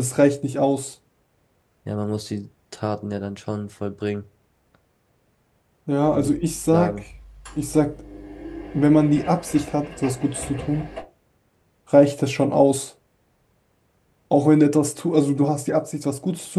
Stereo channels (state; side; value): identical; both; correlation 1.00